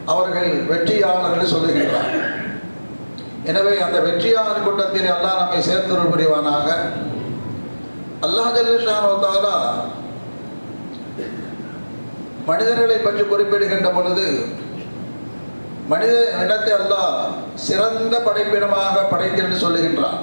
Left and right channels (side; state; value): both; inverted; correlation -1.00